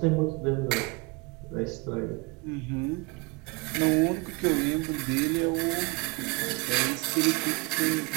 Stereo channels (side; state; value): left; quieter; 26.9 dB